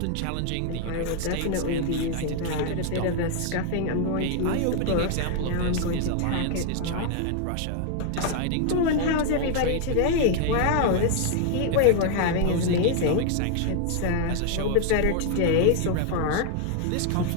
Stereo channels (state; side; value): different; both; correlation 0.00